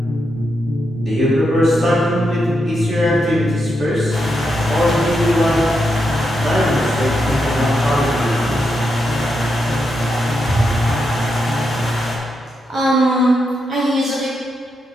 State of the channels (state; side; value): normal; both; correlation 0.84